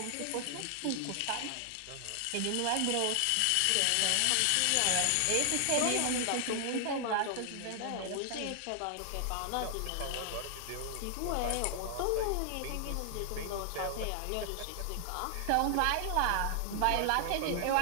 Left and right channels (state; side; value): different; both; correlation 0.00